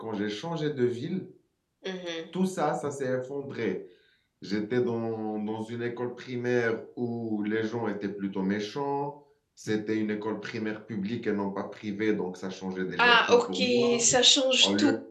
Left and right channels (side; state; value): both; identical; correlation 1.00